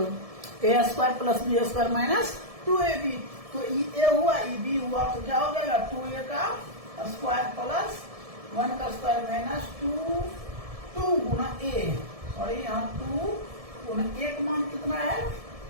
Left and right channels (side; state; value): left; late; 1.7 ms